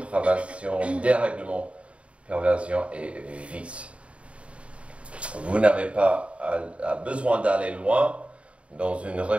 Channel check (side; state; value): left; late; 0.062 ms